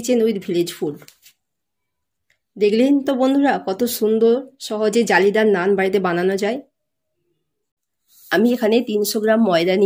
with village food. দেখলেন তো বন্ধুরা কত সুন্দর সহজে জালিদার নান বাড়িতে বানানো যায়। আমি এখানে 300 গ্রাম ময়দা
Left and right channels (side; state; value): both; identical; correlation 1.00